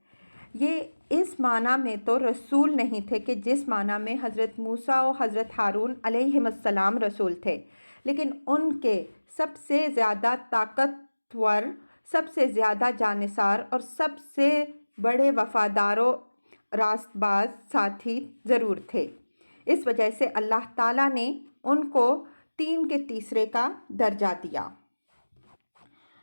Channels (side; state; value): both; inverted; correlation -1.00